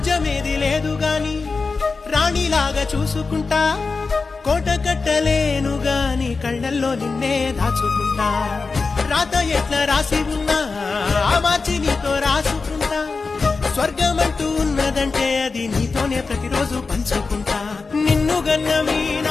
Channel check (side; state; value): right; quieter; 4.3 dB